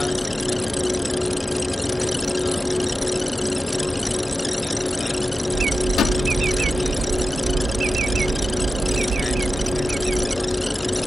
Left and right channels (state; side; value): normal; both; correlation 0.93